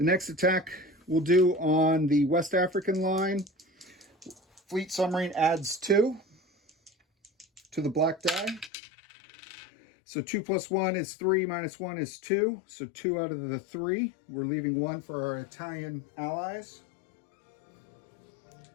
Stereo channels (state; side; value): drops out; right; at 8.7 s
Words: next attack we'll do on the West African line. Fleet Submarine adds 2 to the black die. So 2 + 1 is 3, minus 1 is 2. So 2 out of the 3. We're leaving 1 for our Italian allies.